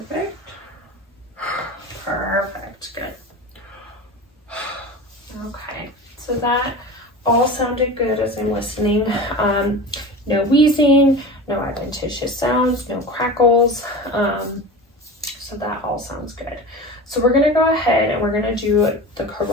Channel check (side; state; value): both; normal; correlation 0.31